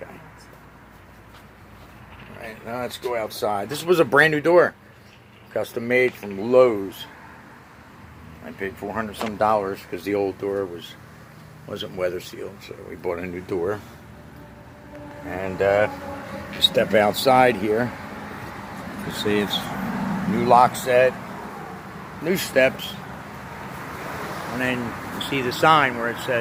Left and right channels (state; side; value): identical; both; correlation 1.00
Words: Alright, now let's go outside. This was a brand new door. Custom made from Lowe's. I paid $400 some because the old door wasn't weather sealed, so we bought a new door. And you step outside here, you see it's new lock set, new steps, and then you see the sign where it